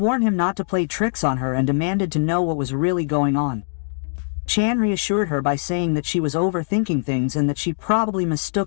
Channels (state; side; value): silent; right; digital silence